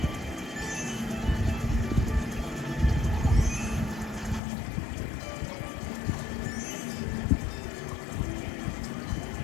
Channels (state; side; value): drops out; right; at 4.4 s